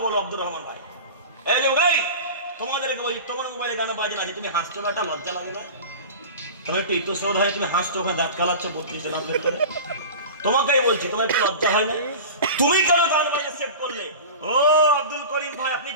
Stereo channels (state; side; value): inverted; both; correlation -0.33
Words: বলো আব্দুর রহমান ভাই? এই লোক, এই তোমাদেরকে বলি, তোমার মোবাইলে গান বাজে আছে, তুমি হাসছো না, একটা লজ্জা লাগে না? তোমার একটু ইতস্তত হয়, তুমি হাসছো, ওখানে দাঁত কালাচ্ছ 32 জন আপনার করে। তোমাকেই বলছি, তোমার একটু লজ্জা হয় না? তুমি কেন গান বাজে সেভ করলে? ও আব্দুল করিম ভাই, আপনি